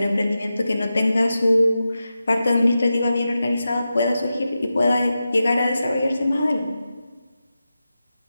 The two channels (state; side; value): inverted; both; correlation -0.92